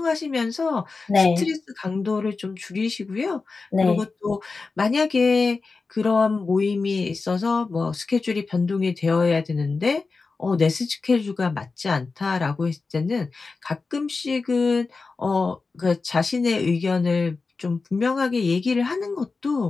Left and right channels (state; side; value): quieter; right; 4.1 dB